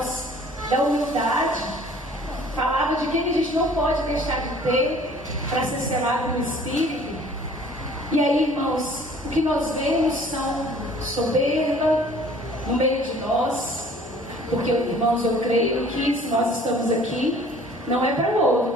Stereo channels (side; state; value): both; normal; correlation 0.52